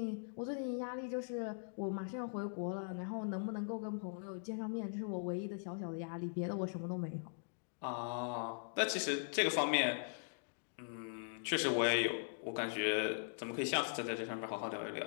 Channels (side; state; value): right; silent; digital silence